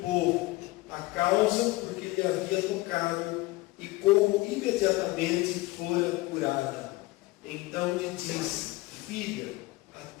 a causa por que lhe havia tocado e como imediatamente fora curada. Então lhe disse: filha, a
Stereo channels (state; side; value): quieter; right; 20.6 dB